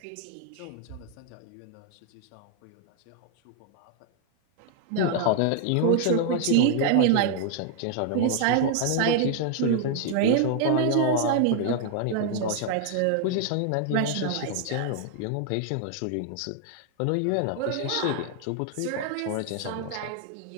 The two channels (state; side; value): different; both; correlation 0.00